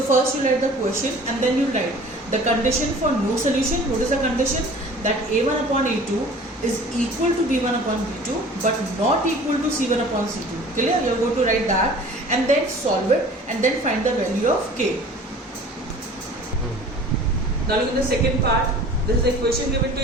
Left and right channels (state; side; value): normal; both; correlation 0.46